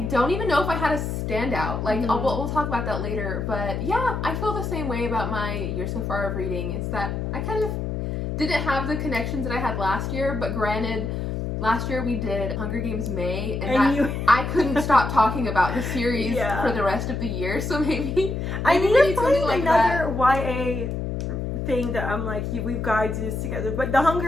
don't even know if I had a standout. Like, we'll talk about that later. But yeah, I feel the same way about my year so far of reading. Is that I kind of didn't have the connections that I had last year, but granted, last year we did Hunger Games May, and I couldn't stop talking about the series for the rest of the year, so maybe I need to find like another YA thing that I'm like, we've got to do this together. But the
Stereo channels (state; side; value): noise; left; hum, 3 dB below the sound